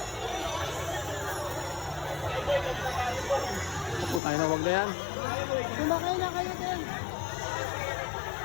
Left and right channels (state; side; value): drops out; right; at 4.2 s